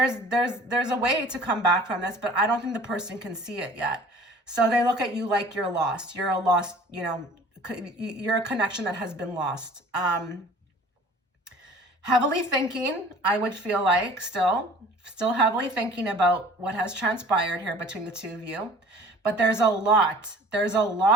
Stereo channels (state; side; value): normal; both; correlation 0.48